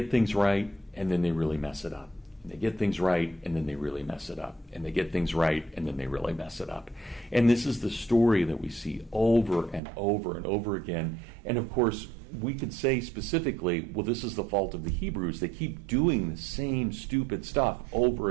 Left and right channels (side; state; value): left; drops out; at 9.8 s